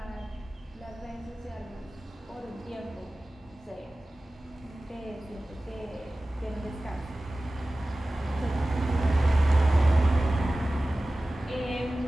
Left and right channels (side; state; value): both; normal; correlation 0.97